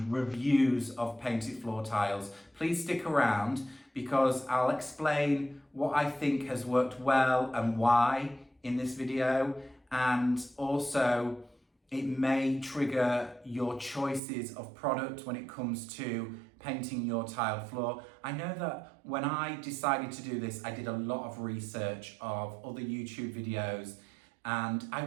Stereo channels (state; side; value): drops out; left; at 14.2 s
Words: reviews of painted floor tiles, please stick around because I'll explain what I think has worked well and why in this video, and also it may trigger your choices of product when it comes to painting your tiled floor. I know that when I decided to do this, I did a lot of research of other YouTube videos, and I